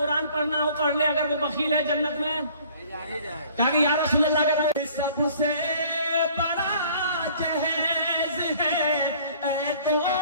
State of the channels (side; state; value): both; inverted; correlation -0.53